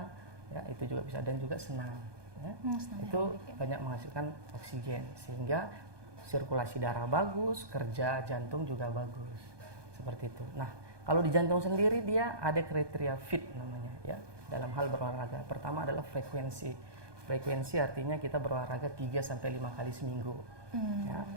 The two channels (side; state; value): left; late; 1.2 ms